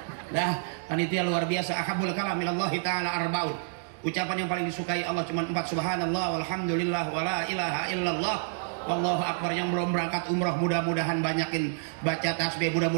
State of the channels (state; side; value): silent; left; digital silence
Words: Dah, panitia luar biasa. Ahabul kalam ilallahi ta'ala arbaun. Ucapan yang paling disukai Allah cuma 4, subhanallah walhamdulillah wala ilaha illallah wallahu akbar. Yang belum berangkat umrah mudah-mudahan banyakin baca tasbih,